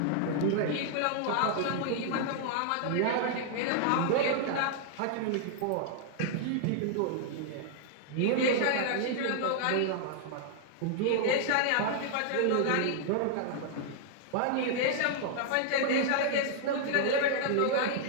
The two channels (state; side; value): different; both; correlation 0.00